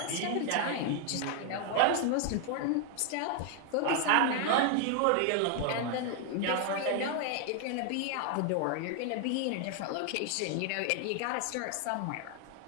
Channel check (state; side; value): different; both; correlation 0.00